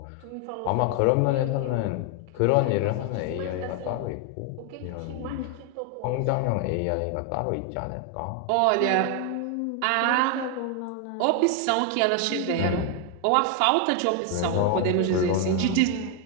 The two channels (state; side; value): different; both; correlation 0.01